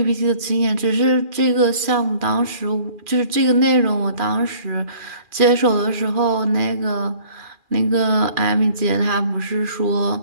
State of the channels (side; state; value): left; late; 2.4 ms